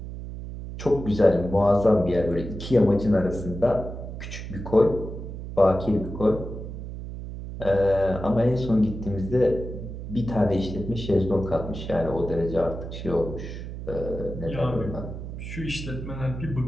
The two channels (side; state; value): right; noise; hum, 9 dB below the sound